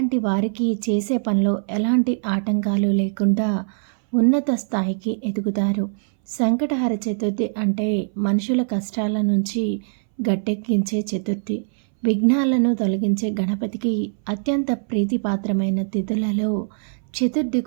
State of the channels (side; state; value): left; silent; 62 dB below the other